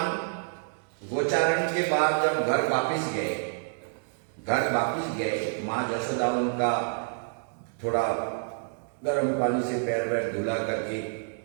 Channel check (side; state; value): left; silent; digital silence